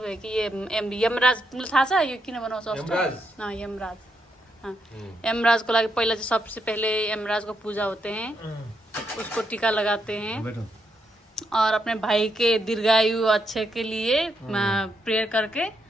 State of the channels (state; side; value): normal; both; correlation 0.79